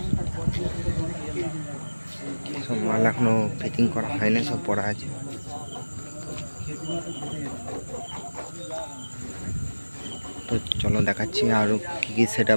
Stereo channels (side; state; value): both; inverted; correlation -1.00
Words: সব মাল এখনো ফিটিং করা হয়নি, সব পড়া আছে। তো চলো দেখাচ্ছি আরও কী কী সেট